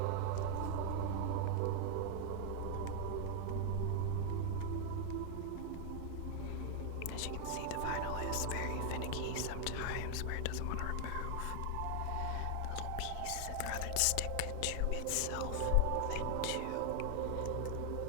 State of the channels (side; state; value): both; different; correlation 0.00